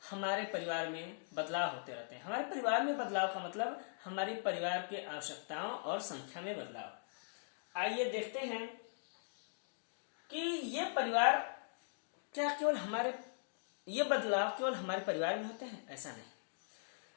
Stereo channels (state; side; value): silent; right; digital silence